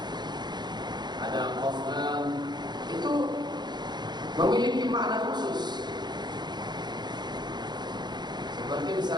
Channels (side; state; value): left; late; 0.21 ms